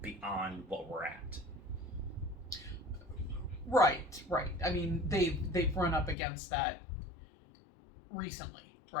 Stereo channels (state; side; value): drops out; right; at 6.2 s